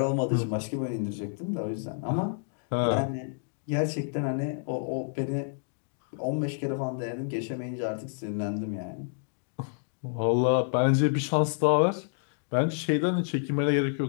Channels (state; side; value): silent; right; digital silence